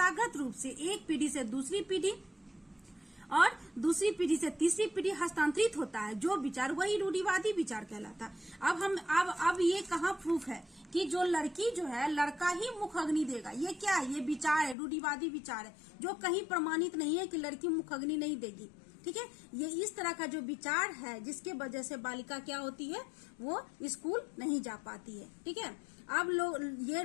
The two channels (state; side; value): drops out; right; at 14.8 s